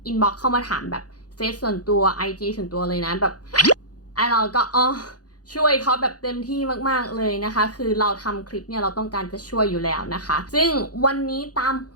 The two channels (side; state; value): right; late; 0.68 ms